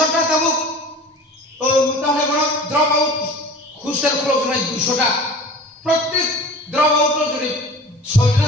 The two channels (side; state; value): both; normal; correlation 0.40